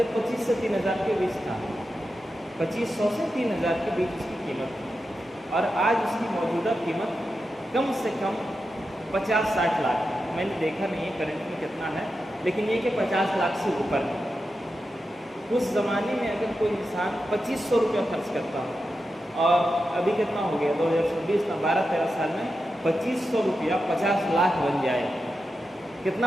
25 سے 3000 کے بیچ تھا، 2500 سے 3000 کے بیچ اس کی قیمت تھی، اور آج اس کی موجودہ قیمت کم سے کم 50-60 لاکھ ہے۔ میں نے دیکھا نہیں ہے کرنٹ میں کتنا ہے، لیکن یہ کہ 50 لاکھ سے اوپر ہے۔ اس زمانے میں اگر کوئی انسان 2500 روپیہ خرچ کرتا ہو، اور ابھی کتنا ہو گیا 2026 میں 12-13 سال میں 2500 روپیہ 50 لاکھ بن جائے، کتنا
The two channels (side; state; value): both; normal; correlation 0.89